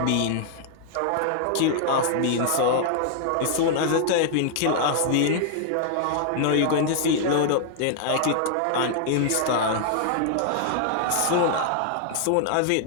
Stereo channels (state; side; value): different; both; correlation 0.00